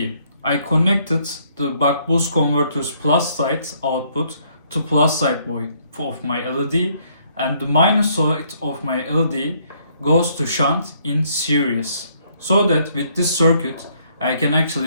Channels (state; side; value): inverted; both; correlation -0.67